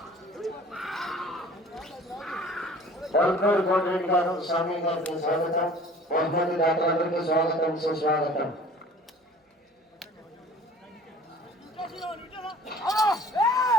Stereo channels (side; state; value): both; normal; correlation 0.48